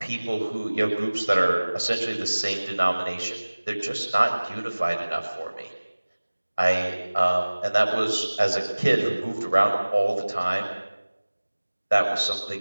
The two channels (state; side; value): inverted; both; correlation -1.00